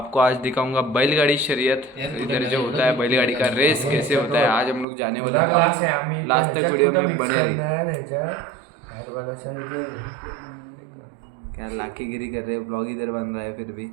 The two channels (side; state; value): left; drops out; at 4.9 s